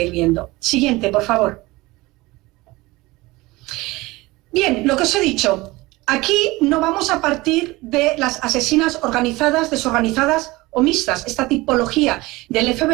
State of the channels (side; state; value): left; quieter; 21.0 dB